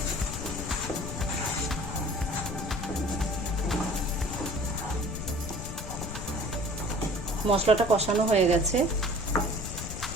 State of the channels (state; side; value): noise; left; rumble, 6 dB below the sound